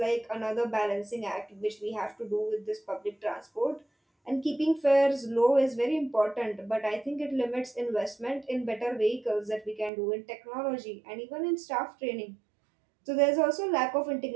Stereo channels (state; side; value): drops out; left; at 9.9 s